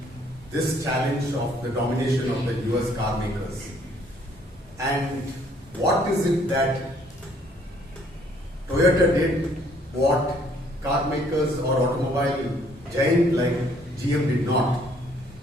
this challenge of the domination of the US car makers. And what is it that Toyota did what car makers or automobile giant like GM did not?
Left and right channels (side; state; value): both; normal; correlation 0.63